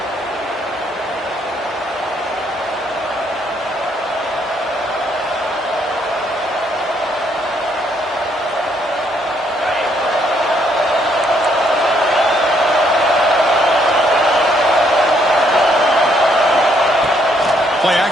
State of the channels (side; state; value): both; normal; correlation 0.70